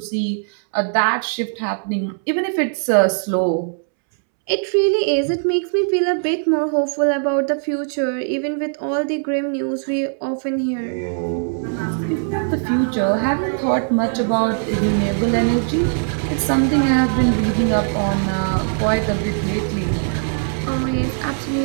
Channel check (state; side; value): silent; left; 66 dB below the other